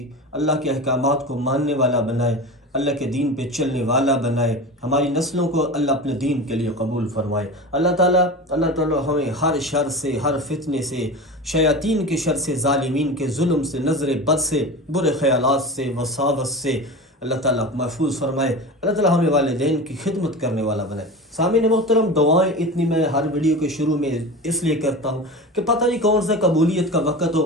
احکامات کو ماننے والا بنائے، اللہ کے دین پہ چلنے والا بنائے، ہماری نسلوں کو اللہ اپنے دین کے لیے قبول فرمائے۔ اللہ تعالیٰ ہمیں ہر شر سے، ہر فتنے سے، شیاطین کے شر سے، ظالمین کے ظلم سے، نظر بد سے، برے خیالات سے، وساوس سے اللہ تعالیٰ محفوظ فرمائے۔ اللہ تعالیٰ ہمیں والدین کی خدمت کرنے والا بنائے۔ سامعین محترم، دعائیں اتنی میں ہر ویڈیو کے شروع میں اس لیے کرتا ہوں کہ پتہ نہیں کون سا قبولیت کا وقت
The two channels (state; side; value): normal; both; correlation 0.30